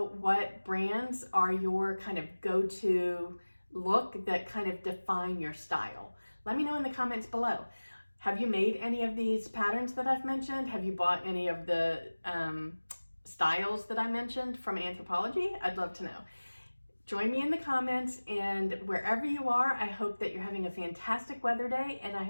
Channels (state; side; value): inverted; both; correlation -1.00